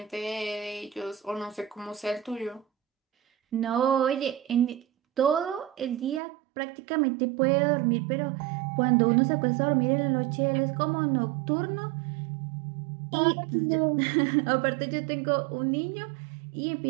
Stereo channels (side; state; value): left; drops out; at 6.2 s